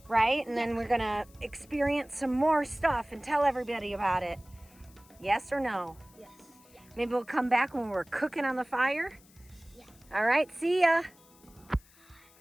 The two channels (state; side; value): noise; left; hiss, 27 dB below the sound